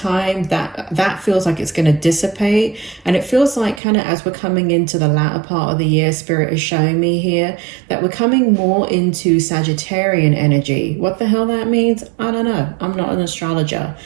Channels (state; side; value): drops out; left; at 3.8 s